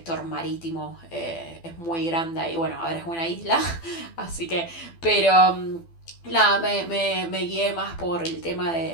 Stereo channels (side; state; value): right; late; 12 ms